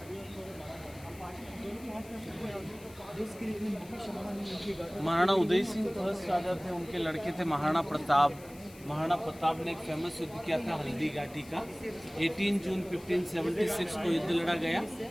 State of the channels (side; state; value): left; noise; hiss, 21 dB below the sound